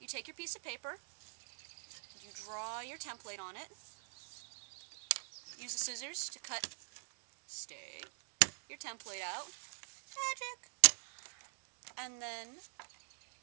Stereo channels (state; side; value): silent; left; digital silence